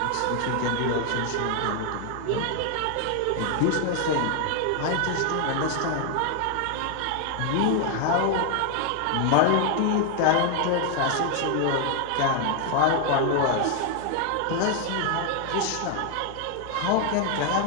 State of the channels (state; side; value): different; both; correlation 0.00